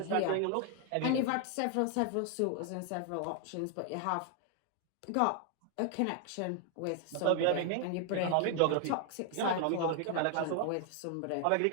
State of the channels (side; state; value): both; different; correlation 0.00